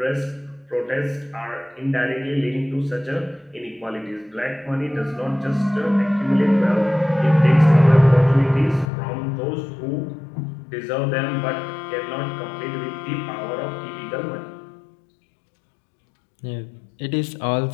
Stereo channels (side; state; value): right; drops out; at 8.9 s